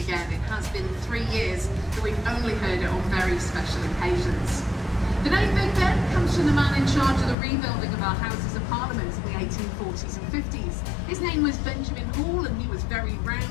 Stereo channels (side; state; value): right; drops out; at 7.4 s